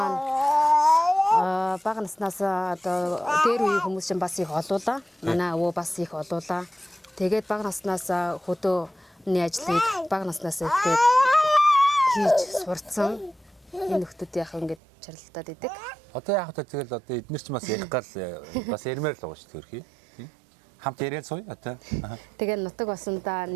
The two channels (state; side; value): drops out; left; at 14.8 s